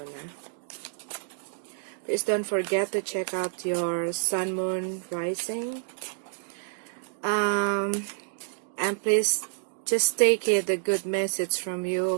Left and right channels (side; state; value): left; silent; digital silence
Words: Please don't forget to check out your Sun, Moon, Rising. And please just take it a good message from you,